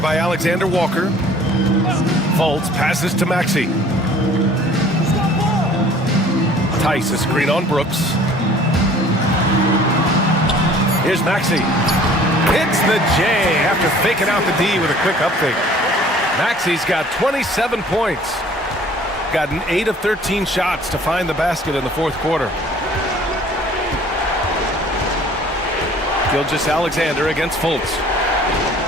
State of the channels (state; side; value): normal; both; correlation 0.52